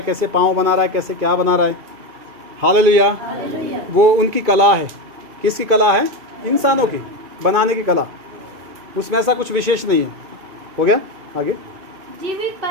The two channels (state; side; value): late; left; 2.2 ms